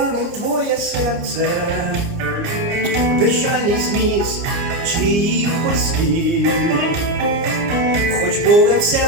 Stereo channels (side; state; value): left; late; 29 ms